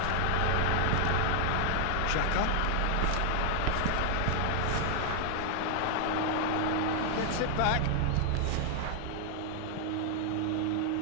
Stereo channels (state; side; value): different; both; correlation 0.00